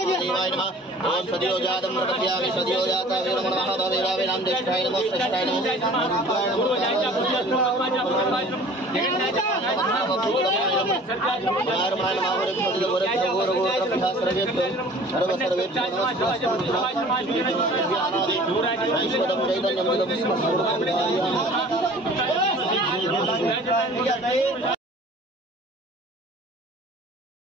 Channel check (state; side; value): normal; both; correlation 0.47